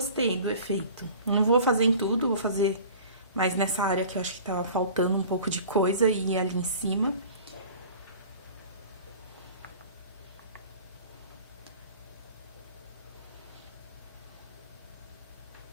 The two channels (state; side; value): inverted; both; correlation -0.43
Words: do efeito. Não vou fazer em tudo, vou fazer mais nessa área que eu acho que tava faltando um pouco de coisa e ali em cima.